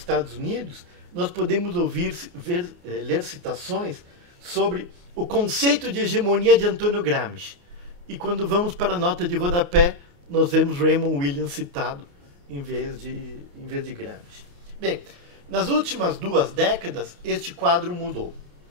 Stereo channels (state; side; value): late; left; 28 ms